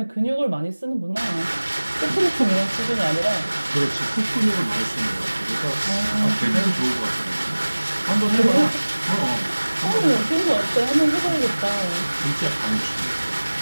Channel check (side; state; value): both; inverted; correlation -1.00